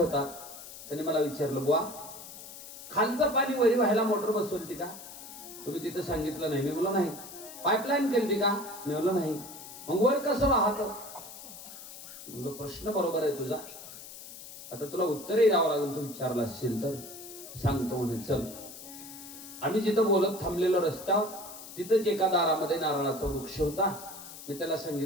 त्याने मला विचारलं, बुवा खालचं पाणी वरी व्हायला मोटर बसवली का? तुम्ही तिथं सांगितलं नाही. मी म्हणलो नाही. पाईपलाईन केली का? मी म्हणलो नाही. मग वर कसं वाहत? म्हणलो प्रश्न बरोबर आहे तुझा, आता तुला उत्तरही द्यावं लागेल. तू विचारला असशील तर सांगतो म्हणे. चल. आम्ही जिथं बोलत थांबलेलो रस्त्यावर तिथंच एका दारामध्ये नारळाचा वृक्ष होता. मी त्याला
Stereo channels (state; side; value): noise; left; hiss, 14 dB below the sound